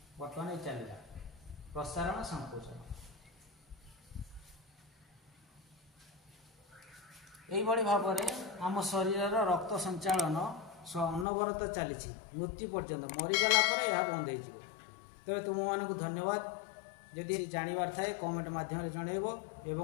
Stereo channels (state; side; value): drops out; right; at 11.2 s